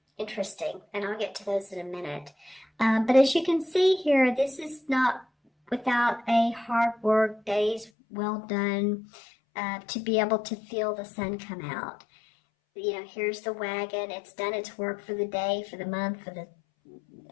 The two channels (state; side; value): drops out; right; at 7.9 s